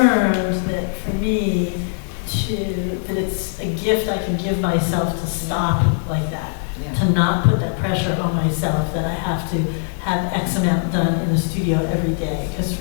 that for me, that it's a gift I can give myself to stop like that, to not put that pressure on myself that I have to have X amount done in the studio every day. Because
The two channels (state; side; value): silent; right; digital silence